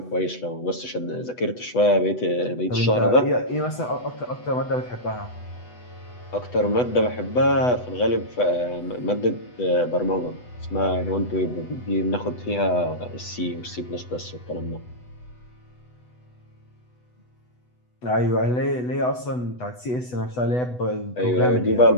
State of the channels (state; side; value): late; right; 8.1 ms